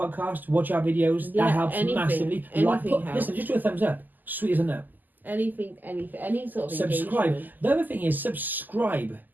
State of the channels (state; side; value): late; left; 0.086 ms